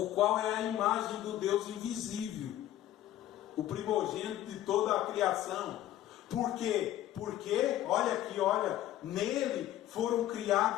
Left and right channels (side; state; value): right; quieter; 13.2 dB